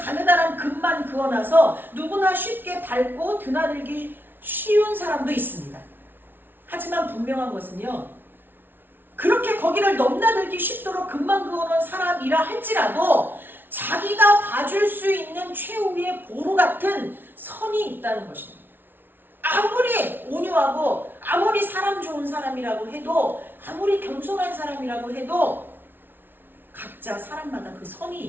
금만 그어놔서 누구나 쉽게 밟고 드나들기 쉬운 사람도 있습니다. 하지만 분명한 것은요, 그렇게 거기를 넘나들기 쉽도록 금만 그어놓은 사람이라 할지라도 자기가 봐줄 수 있는 최후의 보루 같은 선이 있다는 것입니다. 아무리 온유하고 아무리 사람 좋은 사람이라고 해도, 아무리 겸손한 사람이라고 해도 각자 사람마다 그 선이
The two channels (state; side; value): late; left; 0.099 ms